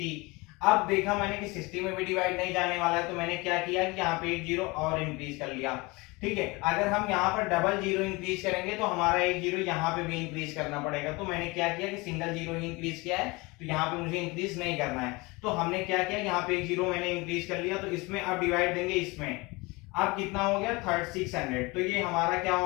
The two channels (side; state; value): right; quieter; 24.7 dB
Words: अब देखा मैंने कि 60 में भी डिवाइड नहीं जाने वाला है, तो मैंने क्या किया कि यहाँ पे एक जीरो और इंक्रीज कर लिया। ठीक है, अगर हम यहाँ पर डबल जीरो इंक्रीज करेंगे तो हमारा एक जीरो यहाँ पे भी इंक्रीज करना पड़ेगा। तो मैंने क्या किया कि सिंगल जीरो ही इंक्रीज किया है, तो यहाँ पे मुझे इंक्रीज नहीं करना है। तो हमने क्या किया, यहाँ पे एक जीरो मैंने इंक्रीज कर लिया। तो इसमें अब डिवाइड देंगे इसमें, अब कितना हो गया 3600। तो ये हमारा क्या